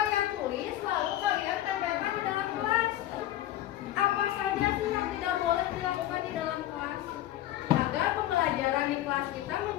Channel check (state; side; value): quieter; right; 13.8 dB